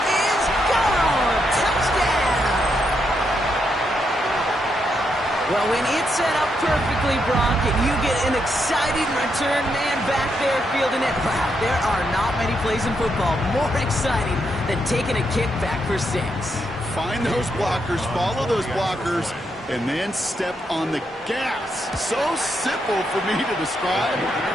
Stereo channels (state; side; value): normal; both; correlation 0.80